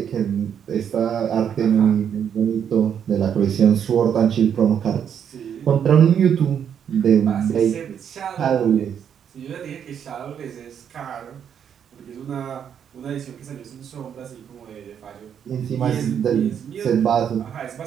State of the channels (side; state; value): left; quieter; 8.4 dB